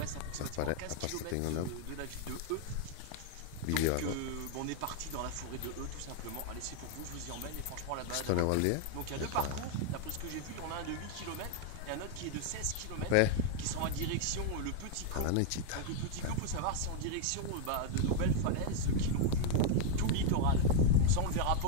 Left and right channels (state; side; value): different; both; correlation 0.00